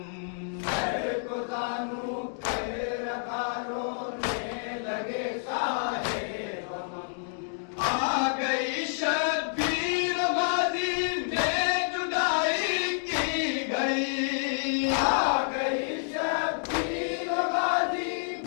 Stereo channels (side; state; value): right; silent; digital silence